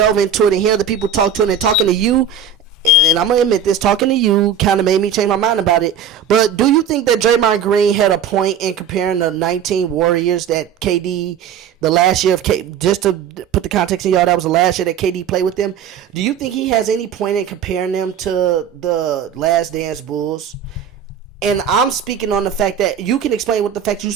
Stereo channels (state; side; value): quieter; left; 7.2 dB